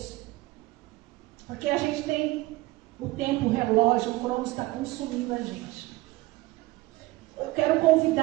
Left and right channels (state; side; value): quieter; left; 19.7 dB